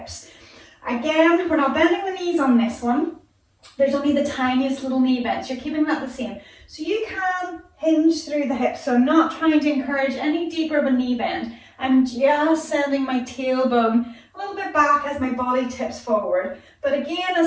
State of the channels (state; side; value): identical; both; correlation 1.00